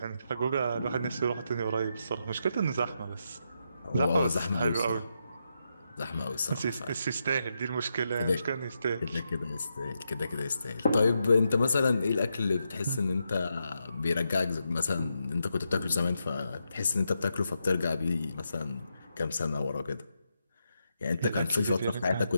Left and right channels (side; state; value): both; inverted; correlation -0.84